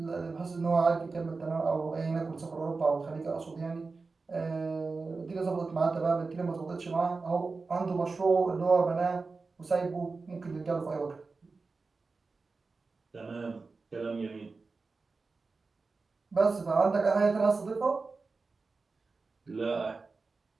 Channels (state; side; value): quieter; left; 4.1 dB